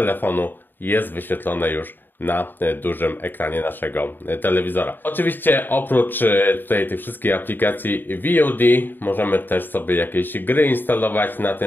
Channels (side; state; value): right; late; 0.093 ms